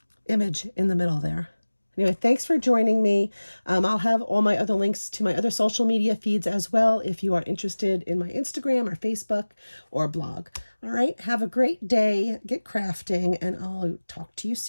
image in the middle there. Anyway, thanks for joining me. I'll have all my other links to my other social media feeds as well if you are interested in my Instagram or Facebook or blog. All right, have a great day, get crafting, and I'll talk to you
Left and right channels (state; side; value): inverted; both; correlation -1.00